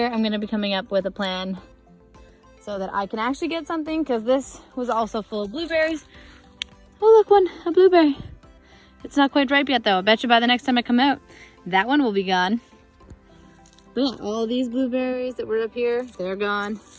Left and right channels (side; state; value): both; identical; correlation 1.00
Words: I'm gonna be coming up with a plan so that I can actually get something, because this was also full of blueberries. Oh look, a blueberry. It's not quite ripe yet though. I bet you by the next time I come out, that one will be gone. But yeah, all these blueberries that were up here, they're gone.